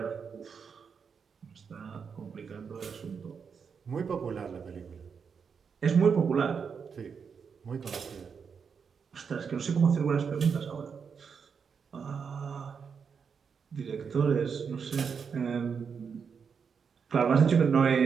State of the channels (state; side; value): quieter; left; 6.2 dB